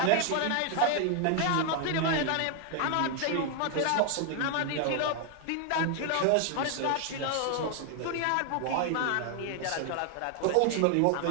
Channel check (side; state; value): both; different; correlation 0.00